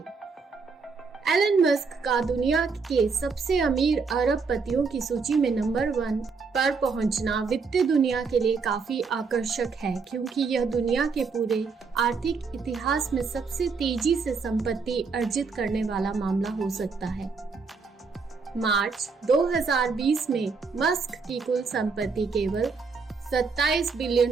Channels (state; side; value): quieter; left; 4.9 dB